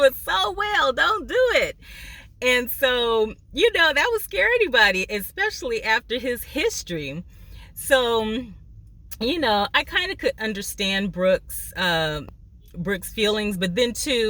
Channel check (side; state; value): both; identical; correlation 1.00